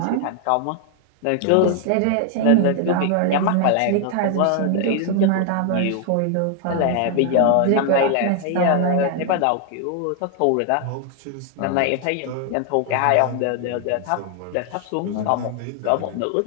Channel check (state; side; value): different; both; correlation 0.00